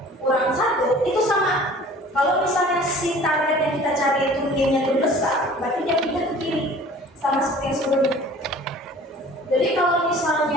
kurang 1 itu sama. Kalau misalnya si target yang kita cari itu nilainya itu besar, berarti dia pindah ke kiri sama seperti yang sebelumnya. Jadi kalau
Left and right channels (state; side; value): normal; both; correlation 0.47